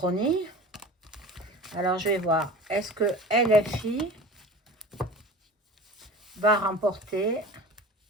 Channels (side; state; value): both; normal; correlation 0.37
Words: Alors, je vais voir. Est-ce que LFI va remporter